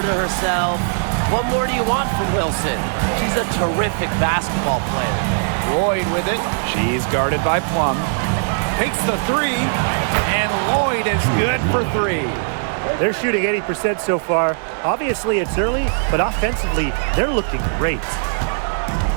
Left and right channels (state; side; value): silent; left; digital silence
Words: to herself. What more do you want from Wilson? She's a terrific basketball player. Lloyd with it. She's guarded by Plum. Takes the three, and Lloyd is good for 3. They're shooting 80% so far. Obviously, it's early, but offensively, they're looking great.